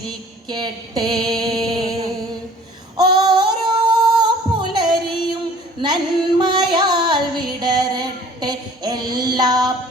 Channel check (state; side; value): normal; both; correlation 0.50